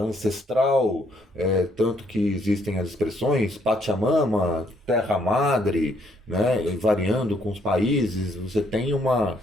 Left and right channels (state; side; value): normal; both; correlation 0.69